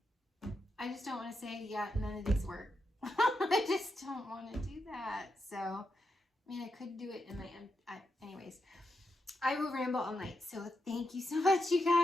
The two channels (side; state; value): both; normal; correlation 0.85